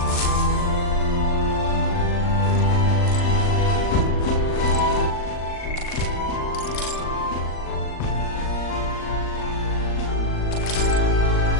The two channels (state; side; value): late; right; 39 ms